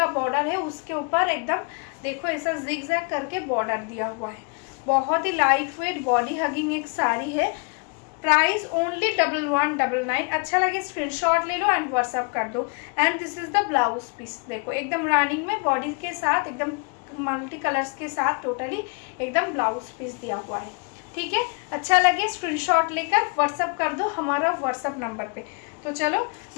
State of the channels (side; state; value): right; quieter; 35.1 dB